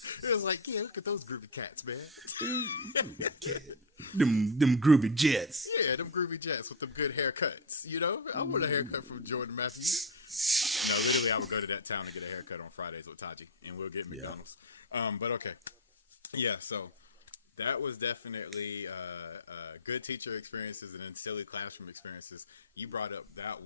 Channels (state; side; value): normal; both; correlation 0.08